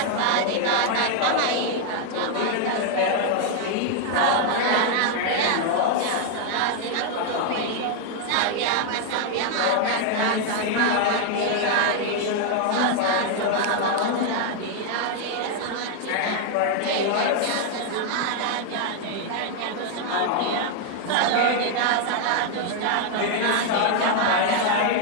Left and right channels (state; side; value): different; both; correlation 0.00